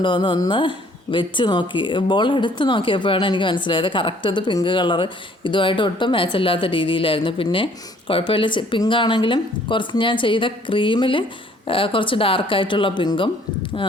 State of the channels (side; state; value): both; normal; correlation 0.59